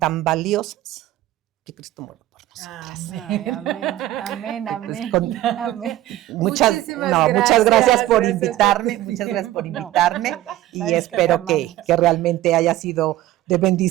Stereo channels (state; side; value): quieter; left; 14.6 dB